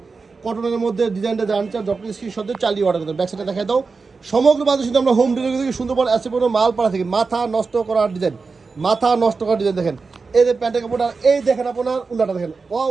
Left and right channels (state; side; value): quieter; left; 4.5 dB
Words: কটনের মধ্যে ডিজাইনটা জানি চান জটকি স্ক্রিন শটে চালিয়ে অর্ডার করতে। ব্যাক সাইডে দেখাই দাও। সমগ্র বাংলাদেশে কিন্তু আমরা হোম ডেলিভারি থেকে সুন্দরবন এসে পড়ো মাল পাড়া থেকে। মাথা নষ্ট করার ডিজাইন, মাথা নষ্ট করার ডিজাইন। দেখেন এই যে প্যান্টের কাপড়টা, এই দেখেন আপনার উন্নাটা দেখেন, ওয়াও